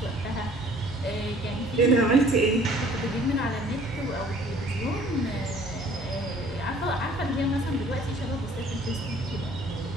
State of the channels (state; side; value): normal; both; correlation 0.55